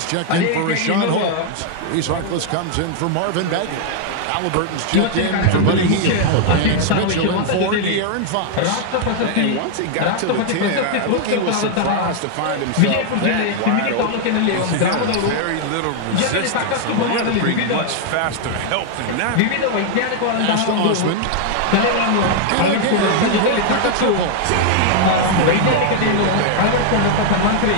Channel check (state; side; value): different; both; correlation 0.00